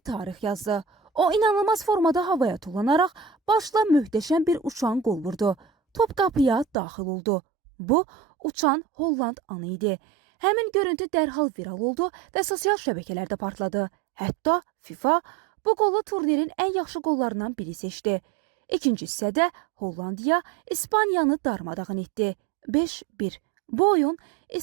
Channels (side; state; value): left; drops out; at 6.8 s